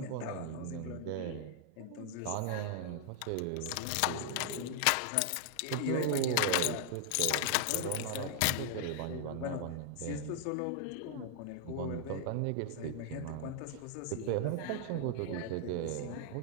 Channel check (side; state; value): both; different; correlation 0.00